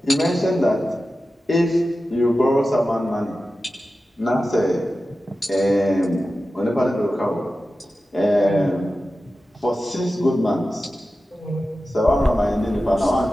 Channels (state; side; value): normal; both; correlation 0.94